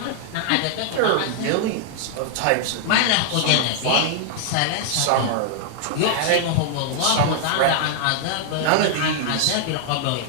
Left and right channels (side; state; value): both; different; correlation -0.01